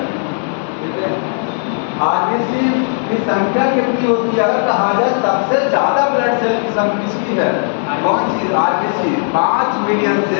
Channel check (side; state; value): right; silent; 58 dB below the other